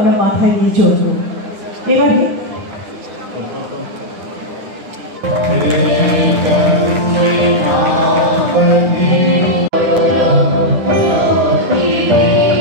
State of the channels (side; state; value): left; late; 9.6 ms